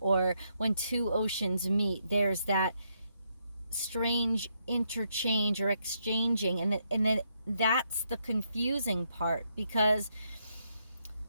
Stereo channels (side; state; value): both; inverted; correlation -0.78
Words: when two oceans meet, there's that strange interchange or exchanging, and then that's the confusing part, because